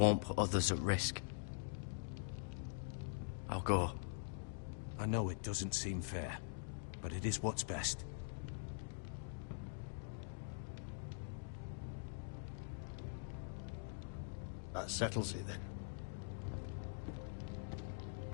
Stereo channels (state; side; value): silent; right; digital silence